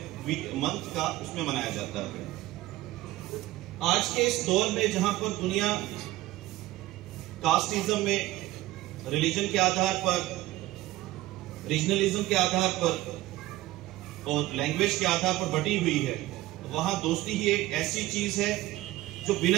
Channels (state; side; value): quieter; left; 16.9 dB